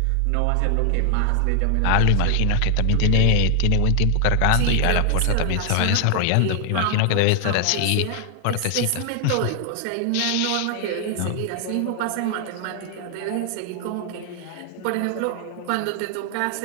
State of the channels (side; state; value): both; different; correlation 0.00